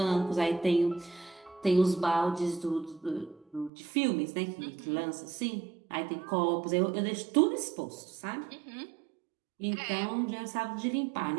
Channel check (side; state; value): left; drops out; at 3.7 s